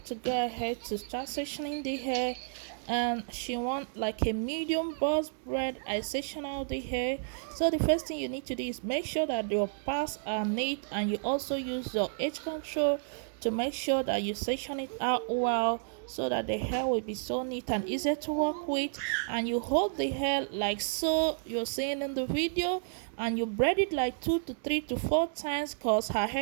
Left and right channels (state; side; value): silent; left; digital silence